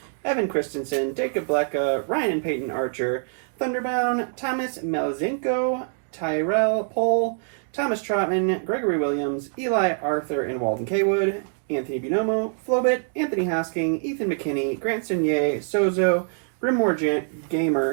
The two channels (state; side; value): silent; left; digital silence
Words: Evan Christensen, Jacob Blecka, Ryan and Peyton Archer, Thunderbound, Thomas Melazinko, Tyrell Pohl, Thomas Trotman, Gregory Williams, Eli Arthur and Walden Kaywood, Anthony Binomo, Flobit, Anthony Hosking, Ethan McKinney, Grant Sinier, Sozo, Brimmore